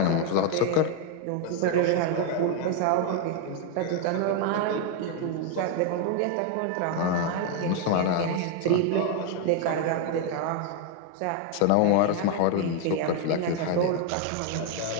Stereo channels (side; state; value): both; different; correlation 0.01